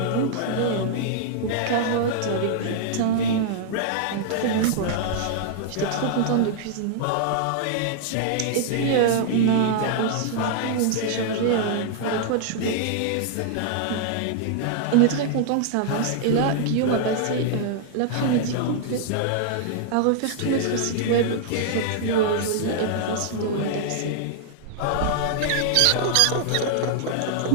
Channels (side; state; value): both; different; correlation -0.01